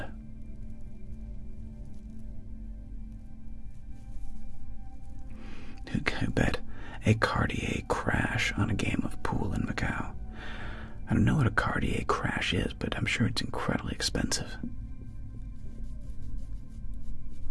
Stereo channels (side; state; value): both; identical; correlation 1.00